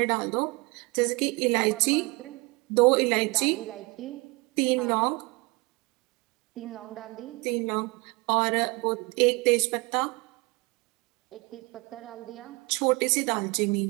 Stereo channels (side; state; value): left; quieter; 26.6 dB